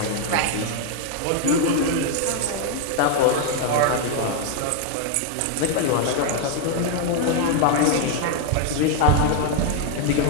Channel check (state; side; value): different; both; correlation 0.01